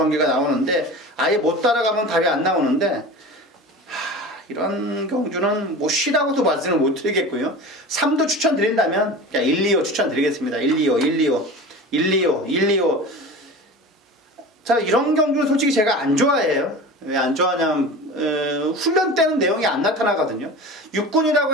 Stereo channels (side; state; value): both; normal; correlation 0.34